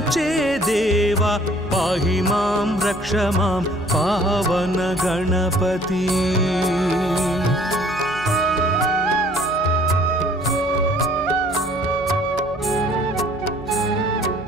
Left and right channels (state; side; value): noise; right; hum, 20 dB below the sound